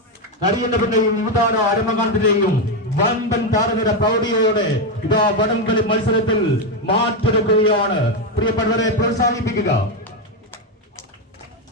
നരേന്ദ്രപുരയും യുവതാര അരമകാന്തിന്റെയും വമ്പൻ താരനിര പ്രൗഢിയോടെ ഇതാ വടംവലി മത്സരത്തിൽ മാറ്റെടുക്കുകയാണ്. പ്രിയപ്പെട്ടവരെ പ്രോത്സാഹിപ്പിക്കുക.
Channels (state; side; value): normal; both; correlation 0.07